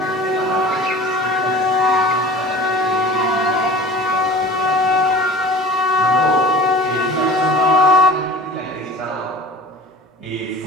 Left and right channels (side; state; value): both; normal; correlation 0.40